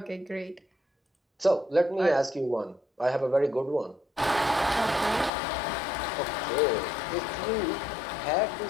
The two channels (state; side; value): drops out; right; at 5.3 s